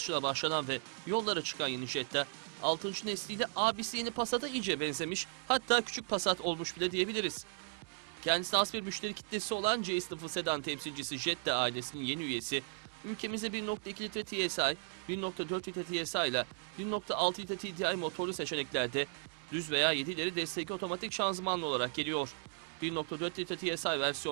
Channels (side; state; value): left; silent; 54 dB below the other